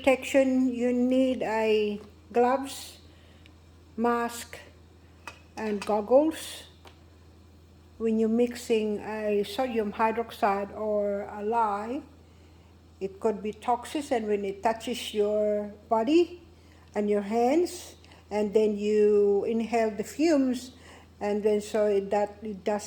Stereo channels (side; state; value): both; identical; correlation 1.00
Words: you need a gloves, mask, and goggles. When you're mixing a sodium hydroxide or a lye, it could be toxic, and when it touches your body and your hands, and then you inhale the fumes, and then so that it